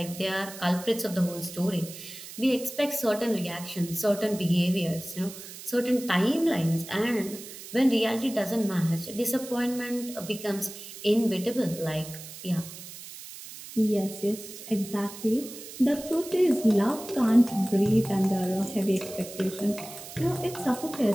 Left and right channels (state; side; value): noise; right; hiss, 13 dB below the sound